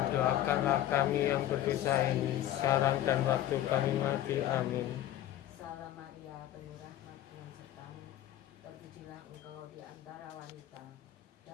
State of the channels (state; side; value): quieter; right; 12.7 dB